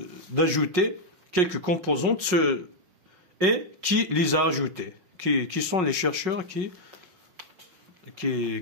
d'ajouter quelques composantes et qui les a ajoutées, qui sont les chercheurs qui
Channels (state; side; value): late; left; 5.5 ms